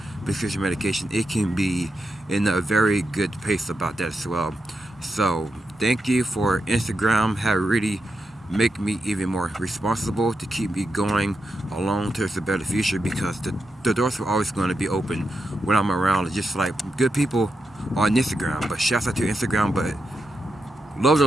prescription medication, it can be in a very good pace about that as well. So thank you for Instagram. Have really make me even more responsible to keep me going along towards a better future, because the doors are always going to be open when I'm around. Just like good people on Instagram, but shouts out to Instagram, but love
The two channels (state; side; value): normal; both; correlation 0.86